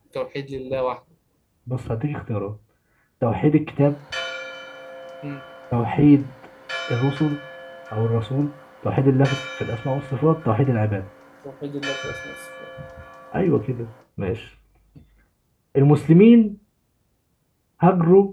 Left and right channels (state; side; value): identical; both; correlation 1.00